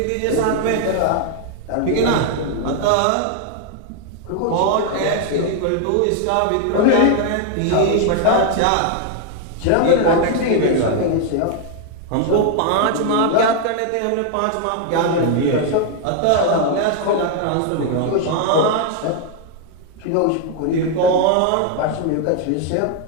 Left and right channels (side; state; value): both; different; correlation 0.00